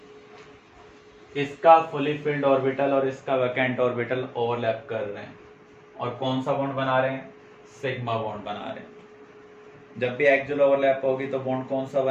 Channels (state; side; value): identical; both; correlation 1.00